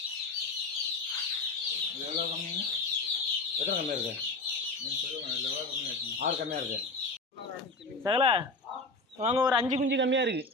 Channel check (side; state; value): right; quieter; 3.1 dB